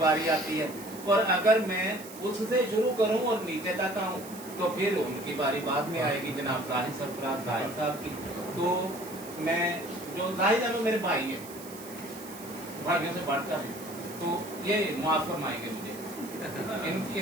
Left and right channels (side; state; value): right; noise; hiss, 16 dB below the sound